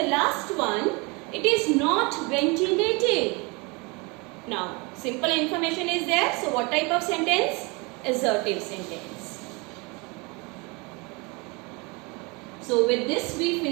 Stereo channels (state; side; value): quieter; left; 28.1 dB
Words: last one, it is not ventilated. Now, simple information is there. So what type of sentence? Assertive sentence. So with this we